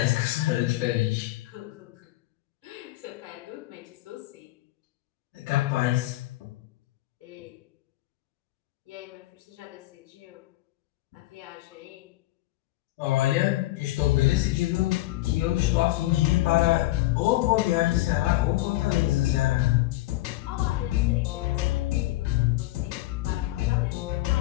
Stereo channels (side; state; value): right; quieter; 17.6 dB